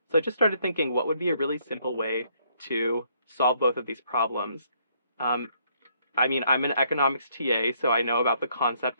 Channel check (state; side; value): inverted; both; correlation -0.69